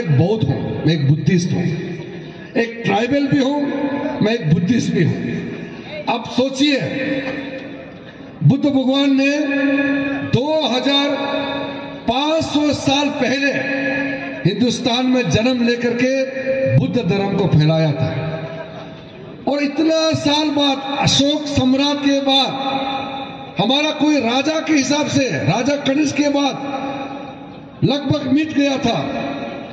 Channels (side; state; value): both; identical; correlation 1.00